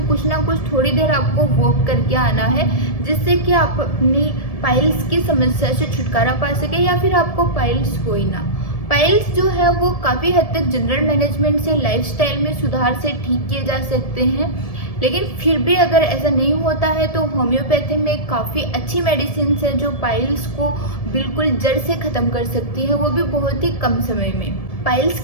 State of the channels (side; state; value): right; late; 1.7 ms